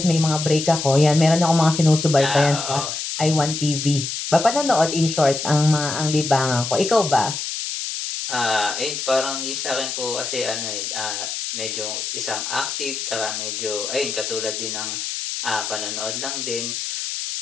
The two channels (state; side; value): noise; left; hiss, 4 dB below the sound